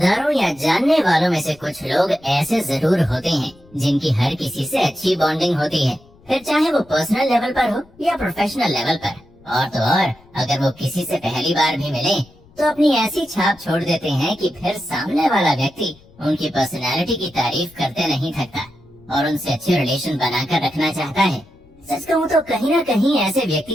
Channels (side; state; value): left; noise; rumble, 27 dB below the sound